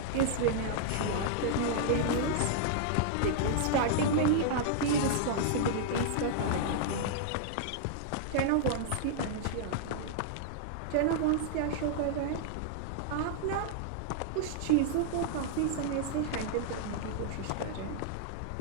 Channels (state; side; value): different; both; correlation -0.01